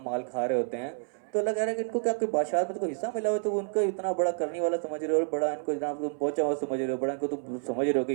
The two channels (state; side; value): silent; left; 58 dB below the other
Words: مال کھا رہے ہوتے ہیں، تو اللہ کہہ رہا ہے کہ ان کو کیا کوئی بادشاہت میں تو کوئی حصہ ملا ہوا ہے، تو وہ ان کو اتنا بڑا کرنے والا سمجھ رہے ہو، بڑا ان کو جناب تم پہنچا ہوا سمجھ رہے ہو، بڑا ان کو تم سمجھ رہے ہو کہ